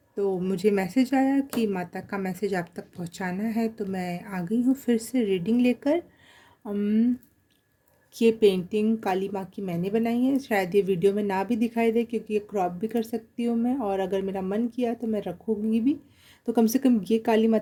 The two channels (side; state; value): both; identical; correlation 1.00